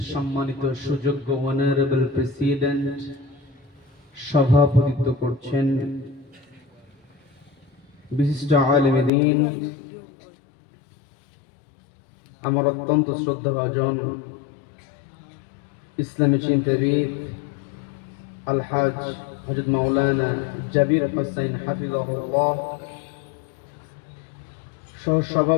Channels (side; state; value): right; drops out; at 9.1 s